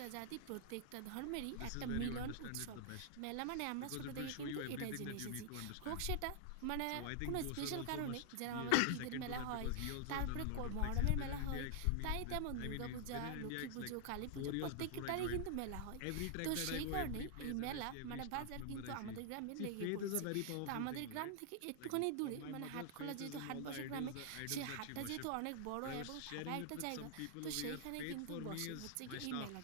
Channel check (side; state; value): both; different; correlation -0.01